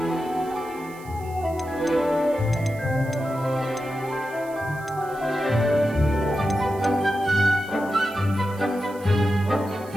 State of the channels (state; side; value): noise; right; hiss, 23 dB below the sound